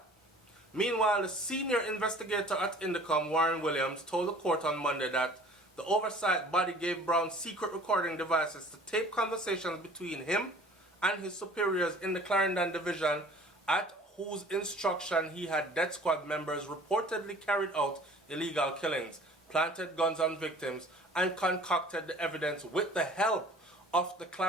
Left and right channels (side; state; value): both; normal; correlation 0.48